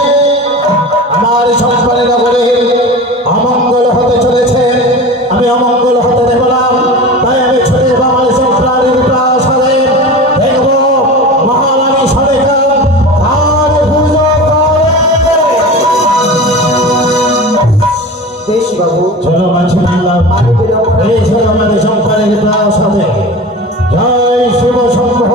আমার সন্তানের নগরে অমঙ্গল হতে চলেছে আমি অমঙ্গল হতে দেব না তাই আমি ছুটে যাব আমার সন্তানের প্রয়াস হবে দেখব মহারানী সরকার কার পুজো করে বেশ বাবু, চলো মাঝি বললাম আমি বিলম্ব না- এই ছিল আমাদের সন্তানের প্রয়াস হবে জয় শিব শম্ভ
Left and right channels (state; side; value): normal; both; correlation 0.32